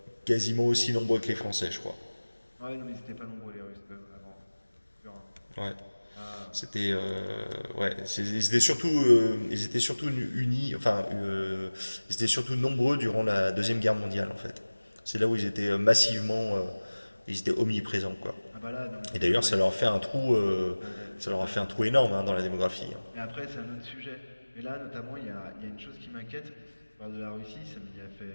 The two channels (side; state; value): both; inverted; correlation -1.00